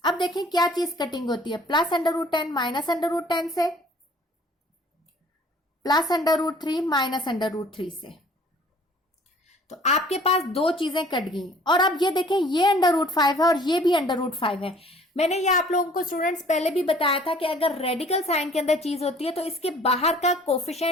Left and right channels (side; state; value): both; normal; correlation 0.53